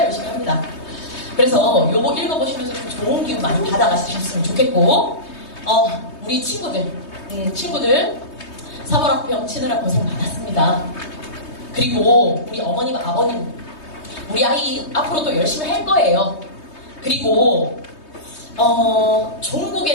열심히 합니다. 그래서 요거 읽어보시면서 좀 좋은 기운 많이 받아가셨으면 좋겠고, 우리 친구들 3월 학병 치느라 고생 많았습니다. 그리고 우리 어머님, 아버님, 우리 아이 앞으로도 열심히 할 거예요. 그리고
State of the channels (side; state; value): right; late; 3.2 ms